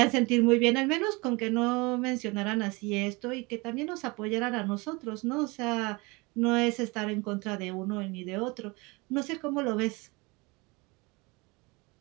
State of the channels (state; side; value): quieter; left; 26.1 dB